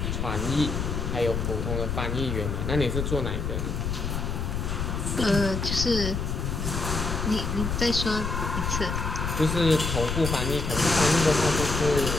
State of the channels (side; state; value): left; noise; rumble, 2 dB below the sound